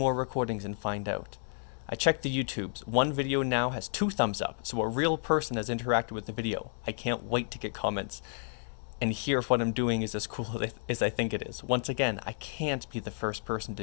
recordings and find out. I checked the YouTubes. One video now has 2 thumbs up, so a real person has interacted with the video. I can't wait to get comments. and hear if what I'm doing is as cool as I think it is. Once again, I can't be the first person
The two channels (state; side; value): silent; right; digital silence